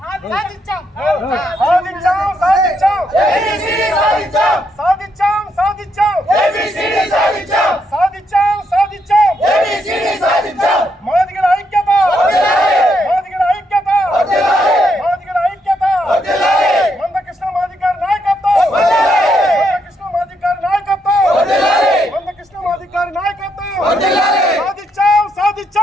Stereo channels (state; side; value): normal; both; correlation 0.77